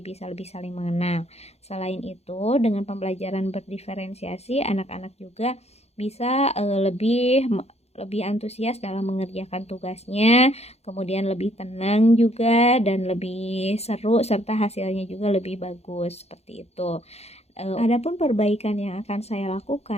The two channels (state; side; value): late; right; 0.31 ms